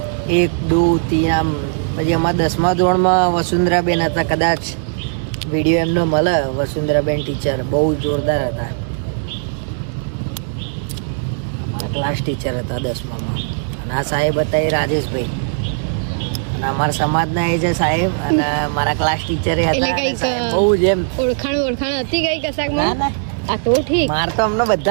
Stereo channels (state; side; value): silent; left; digital silence